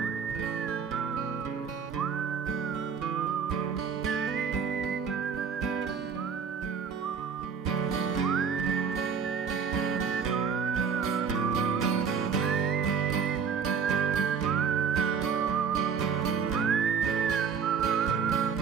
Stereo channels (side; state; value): left; quieter; 6.3 dB